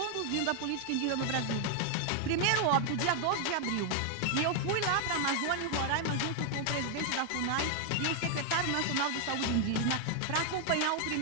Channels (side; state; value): both; different; correlation 0.00